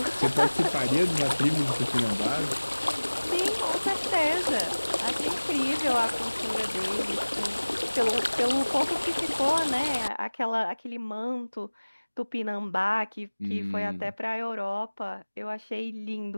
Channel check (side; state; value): both; inverted; correlation -1.00